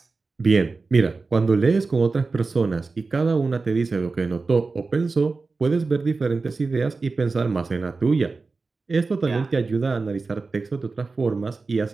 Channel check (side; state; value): left; quieter; 4.0 dB